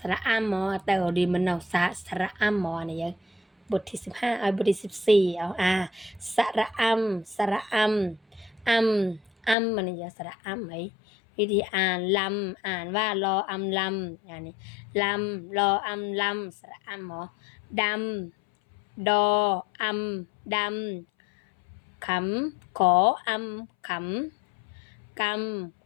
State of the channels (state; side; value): drops out; right; at 9.6 s